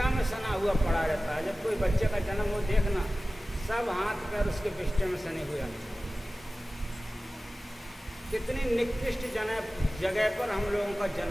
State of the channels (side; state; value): both; normal; correlation 0.96